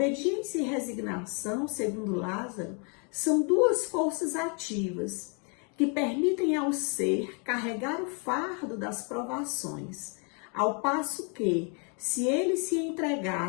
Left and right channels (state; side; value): quieter; right; 36.6 dB